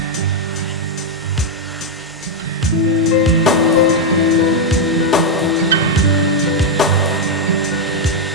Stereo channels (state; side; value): normal; both; correlation 0.00